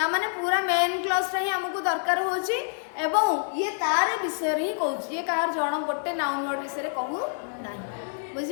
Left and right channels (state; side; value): silent; right; 60 dB below the other